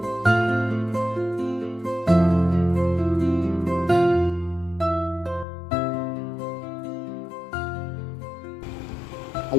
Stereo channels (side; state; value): right; drops out; at 5.5 s